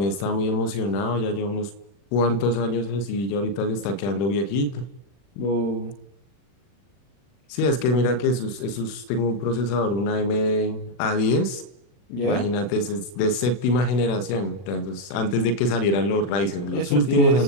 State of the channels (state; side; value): late; right; 40 ms